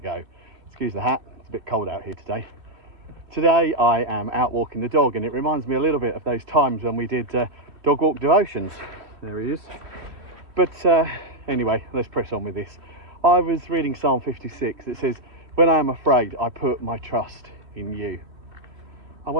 Excuse the hat, it's a bit cold out here today. Today I am out walking the dog, and it reminds me a little bit of those times when we did dog walk devotions. There he is. But anyway, let's press on with this. I was reading Psalm 56. It says, "When I am afraid, I put my trust in you." I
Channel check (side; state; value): left; late; 3.1 ms